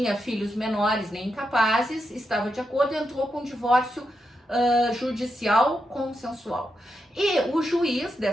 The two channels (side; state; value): both; normal; correlation 0.85